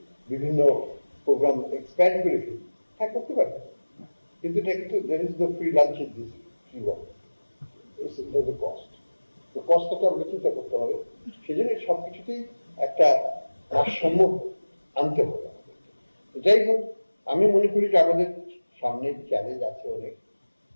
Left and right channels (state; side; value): inverted; both; correlation -1.00